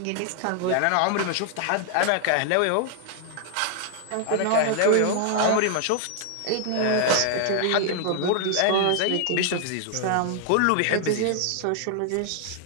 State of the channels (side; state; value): both; different; correlation 0.00